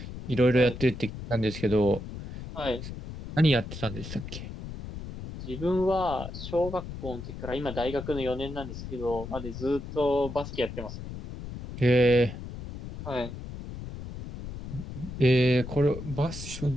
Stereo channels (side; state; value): left; noise; rumble, 9 dB below the sound